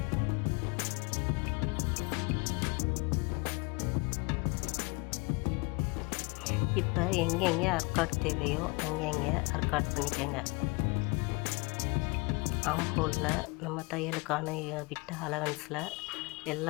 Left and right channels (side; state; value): right; quieter; 28.2 dB